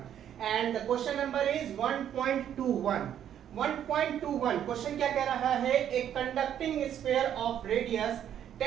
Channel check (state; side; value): quieter; left; 10.0 dB